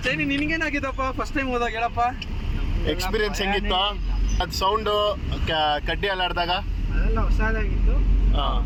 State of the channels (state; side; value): identical; both; correlation 1.00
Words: ಚೈನಿ, ನಿನ್ಗೇನಾಗಿದ್ದಪ್ಪ ಫಸ್ಟ್ ಟೈಮ್ ಹೋದಾಗ? ಹೇಳಪ್ಪ ಎಕ್ಸ್ಪೀರಿಯನ್ಸ್ ಹೆಂಗಿತ್ತು? ಅದು ಸೌಂಡು ಕಡ್ಡಿ ಅಲ್ಲಾಡ್ದಾಗ ಅದೆಲ್ಲ ಹೊಸದಾಗಿತ್ತು.